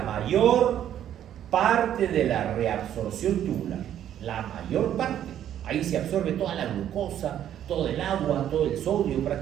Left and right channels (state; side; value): quieter; left; 10.7 dB